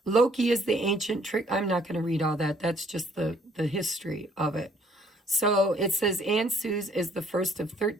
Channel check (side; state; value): both; normal; correlation 0.63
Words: Loki is the ancient trick. I'm not going to read all that. That's just the history of it. So it says Ansus is the first of